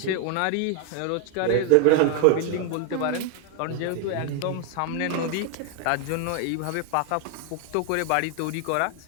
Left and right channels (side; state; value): both; different; correlation 0.00